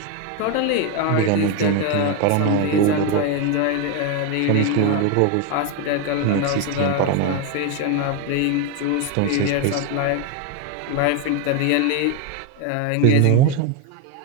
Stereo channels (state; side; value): different; both; correlation 0.02